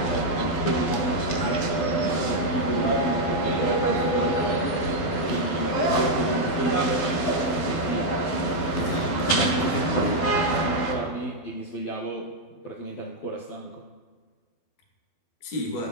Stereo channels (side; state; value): right; late; 12 ms